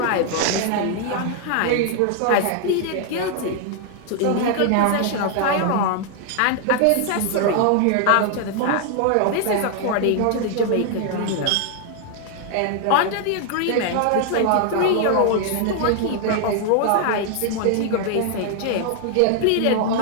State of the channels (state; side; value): different; both; correlation 0.00